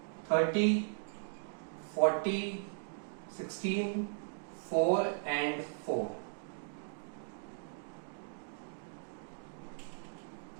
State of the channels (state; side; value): silent; left; digital silence